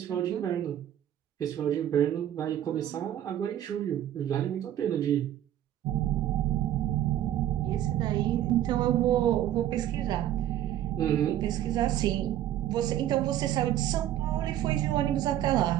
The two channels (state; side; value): quieter; left; 12.0 dB